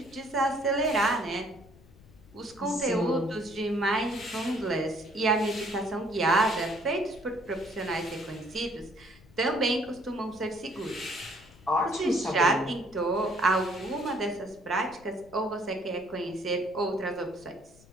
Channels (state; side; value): noise; left; rumble, 24 dB below the sound